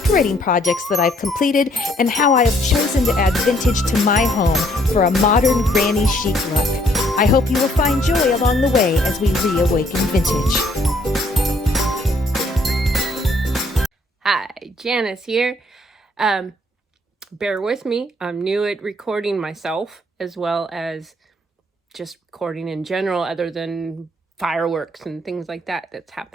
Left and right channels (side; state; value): both; normal; correlation 0.66